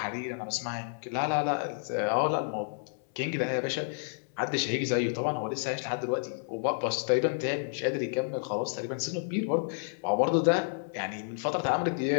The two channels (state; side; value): silent; right; 58 dB below the other